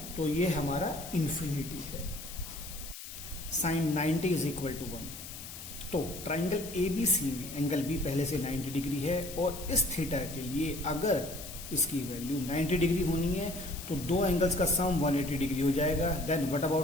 तो ये हमारा इंफिनिटी है। Sine 90 is equal to 1। तो ट्राइंगल एबीसी में एंगल बी पहले से 90 डिग्री है, और इस थीटा के लिए अगर इसकी वैल्यू 90 डिग्री होनी है तो दो एंगल्स का सम 180 डिग्री हो जाएगा। देन व्हाट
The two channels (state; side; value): noise; left; hiss, 12 dB below the sound